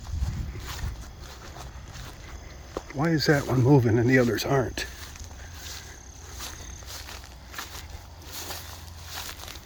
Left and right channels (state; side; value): identical; both; correlation 1.00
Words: Why is that one moving and the others aren't?